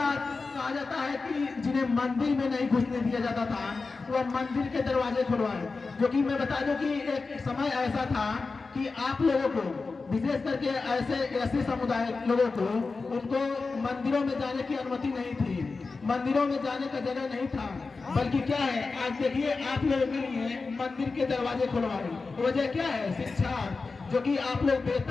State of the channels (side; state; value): right; quieter; 4.1 dB